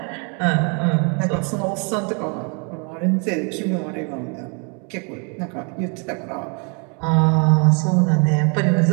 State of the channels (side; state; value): left; quieter; 35.8 dB